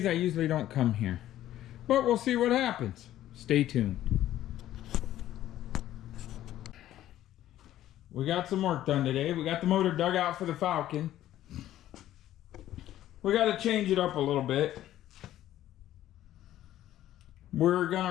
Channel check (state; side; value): quieter; right; 13.1 dB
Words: I usually don't come here. But we'll see what happens. Stay tuned. We got some work done today. We got the motor dug out for the Falcon. We got to change it up a little bit. We're going